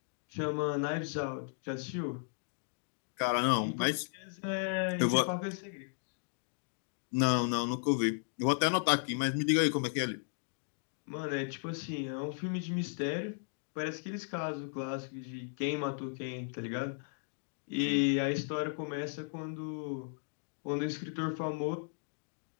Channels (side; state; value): right; silent; digital silence